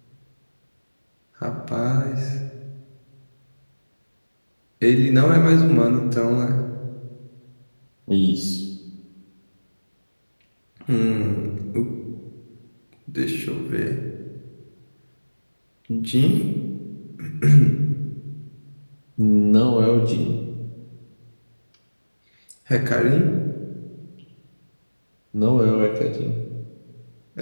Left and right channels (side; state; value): both; inverted; correlation -1.00